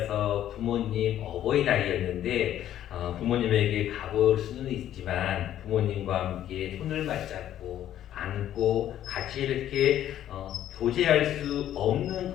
부모님 어버이날이었는데 부모님에게 가볼 수는 있지만 부모님과 함께 손을 맞잡고 안고 같이 이렇게 교제할 수 없는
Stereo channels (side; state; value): right; quieter; 11.6 dB